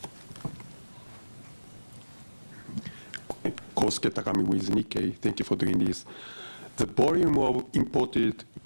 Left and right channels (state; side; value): inverted; both; correlation -1.00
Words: Kosuke Takami with Nikkei. Thank you for doing this. The volume of imported